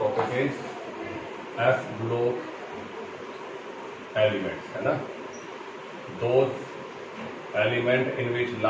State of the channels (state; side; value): identical; both; correlation 1.00